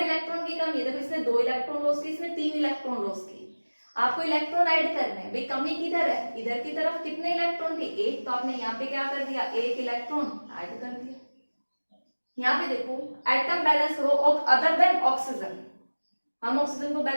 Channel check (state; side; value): inverted; both; correlation -1.00